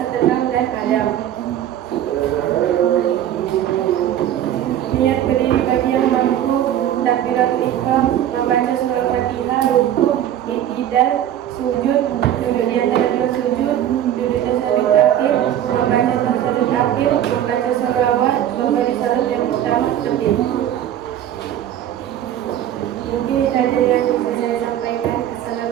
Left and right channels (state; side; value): quieter; left; 11.1 dB